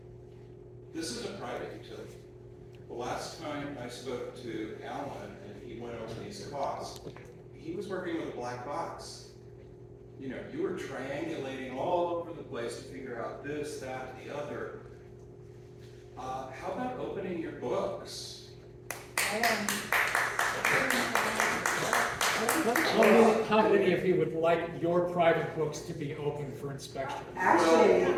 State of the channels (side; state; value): both; identical; correlation 1.00